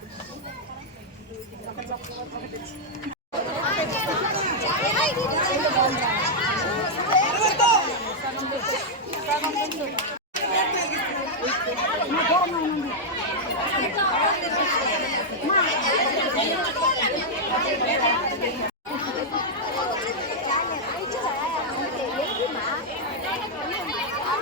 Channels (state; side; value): normal; both; correlation -0.04